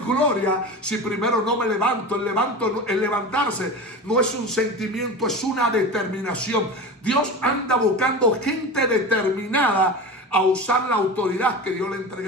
si primero no me levanto. El levantarse no es un sentimiento, es una determinación. Dios anda buscando gente determinada a usar la autoridad que Dios le ha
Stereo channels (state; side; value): normal; both; correlation 0.29